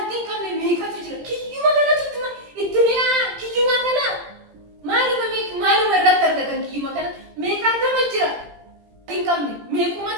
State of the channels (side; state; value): left; late; 17 ms